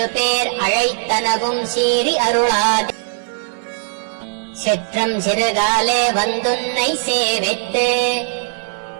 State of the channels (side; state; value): left; silent; 58 dB below the other